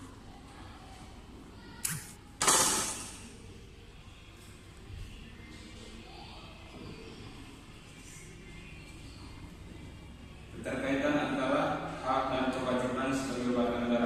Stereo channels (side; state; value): both; identical; correlation 1.00